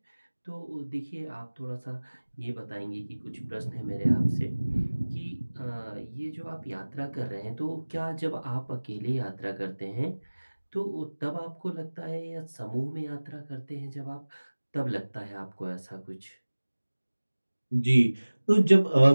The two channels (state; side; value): inverted; both; correlation -1.00